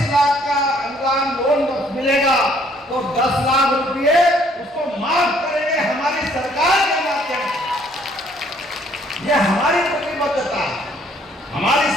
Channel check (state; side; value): normal; both; correlation 0.63